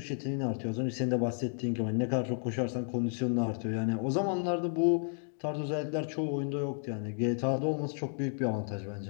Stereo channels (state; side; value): silent; right; 56 dB below the other